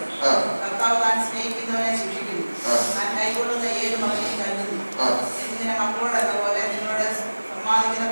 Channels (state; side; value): inverted; both; correlation -1.00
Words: കർത്താവ് താൻ സ്നേഹിക്കുന്നവനെ ശിക്ഷിക്കുന്നു. താൻ കൈകൊള്ളുന്ന ഏത് മകനെയും കരുതുന്നു. എന്നിങ്ങനെ മക്കളോടെന്ന പോലെ നിങ്ങളുടെ സമ്മാനിക്കുന്ന